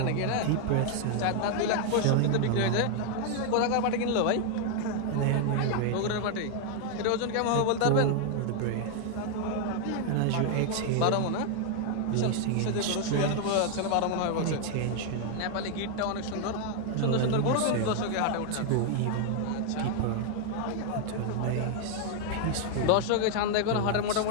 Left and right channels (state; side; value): different; both; correlation 0.00